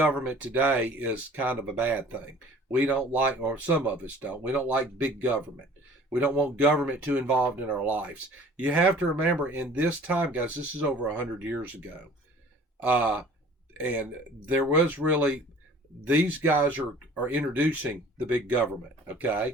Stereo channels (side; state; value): both; normal; correlation 0.49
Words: today as kind of a bad thing. We don't like, or some of us don't, we don't like big government. We don't want government too involved in our lives. You have to remember, in this time, guys, this is over 100 years ago. And there was really, these guys are introducing the big government,